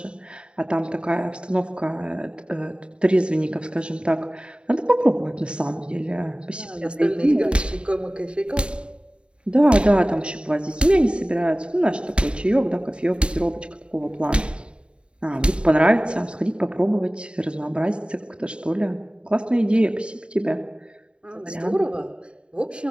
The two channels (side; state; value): left; late; 0.054 ms